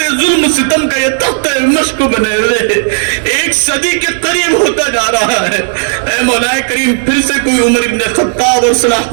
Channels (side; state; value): left; silent; digital silence